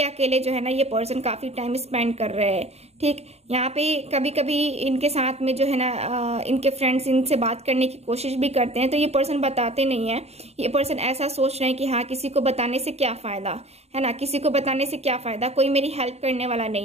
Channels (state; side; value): late; left; 0.31 ms